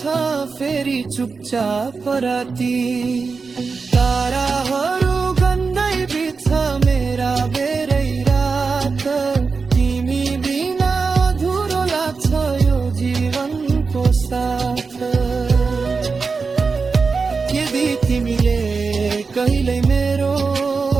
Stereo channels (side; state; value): left; quieter; 4.7 dB